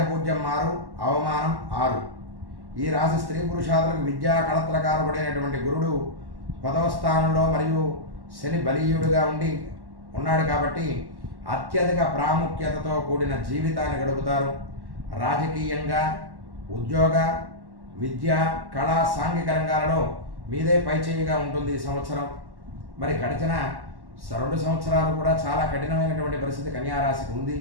6, అవమానం 6. ఈ రాశి స్త్రీ పురుషాదులకు విద్యా కళత్రకారకుడైనటువంటి గురుడు 10వ స్థానంలో మరియు శని బలీయుడుగా ఉన్నాడు కాబట్టి అత్యధిక ప్రాముఖ్యతతో కూడిన జీవితాన్ని గడుపుతారు. రాజకీయంగా, ఉద్యోగ, విద్య, కళ, సాంఘిక రంగాలలో మీదే పైచేయిగా ఉంటుంది ఈ సంవత్సరం. మరి గడిచిన 2 సంవత్సరాలు కూడా చాలా కఠినమైనటువంటి పరిస్థితి కన్యారాశికి ఉంది.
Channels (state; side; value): late; left; 1.1 ms